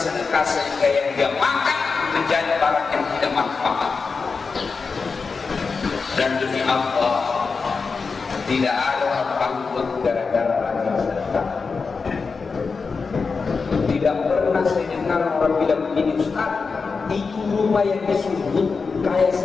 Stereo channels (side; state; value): right; quieter; 4.8 dB